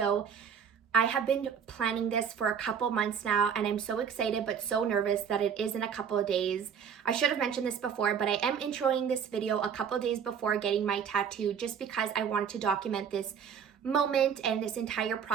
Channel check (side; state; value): left; quieter; 7.3 dB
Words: I have been planning this for a couple months now, and I'm so excited but so nervous that it is in a couple of days. I should have mentioned this before, but I am introing this video a couple of days before getting my tattoo just because I wanted to document this moment and this entire